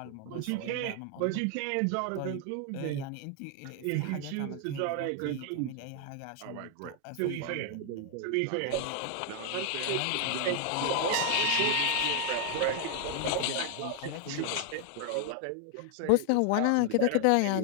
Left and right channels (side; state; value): both; different; correlation 0.00